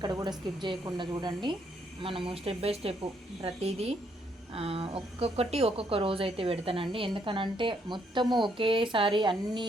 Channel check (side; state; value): both; normal; correlation 0.72